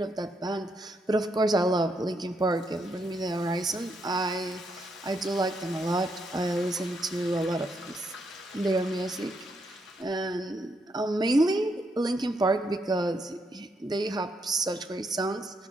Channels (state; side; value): normal; both; correlation 0.78